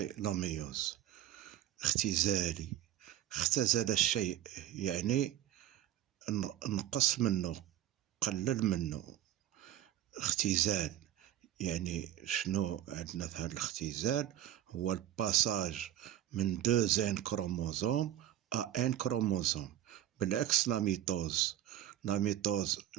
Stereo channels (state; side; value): quieter; left; 12.3 dB